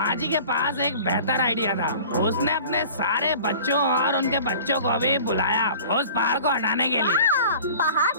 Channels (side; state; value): both; inverted; correlation -0.43